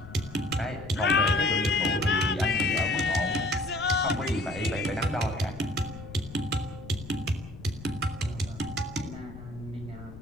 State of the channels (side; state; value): left; noise; rumble, 14 dB below the sound